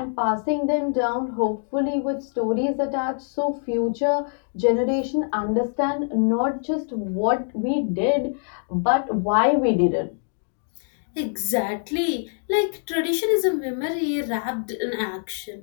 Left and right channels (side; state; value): right; silent; 56 dB below the other